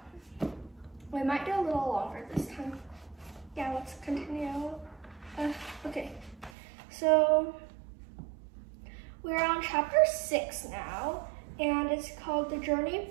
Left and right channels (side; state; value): left; drops out; at 6.5 s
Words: we might do a little longer this time. Yeah, let's continue. Okay, so we're on chapter 6 now, and it's called The Journey